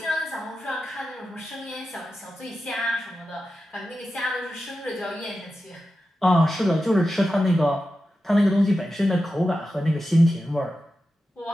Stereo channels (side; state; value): both; normal; correlation 0.91